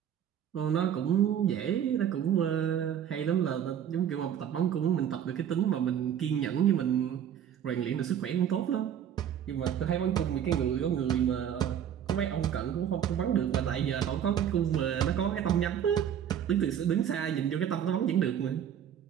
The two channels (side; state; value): left; quieter; 9.4 dB